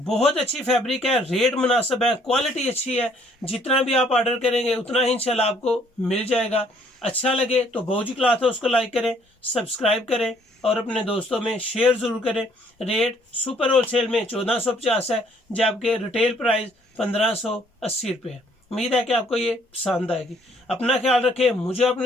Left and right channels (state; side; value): normal; both; correlation 0.63